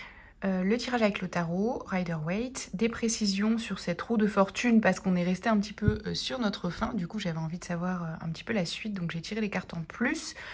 Le tirage avec le tarot, Rider-Waite, des précisions sur cette roue de fortune parce qu'on est resté un petit peu sur notre fin. Du coup, j'avais envie de savoir un petit peu la suite, donc j'ai tiré les cartes en plus.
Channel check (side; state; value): both; identical; correlation 1.00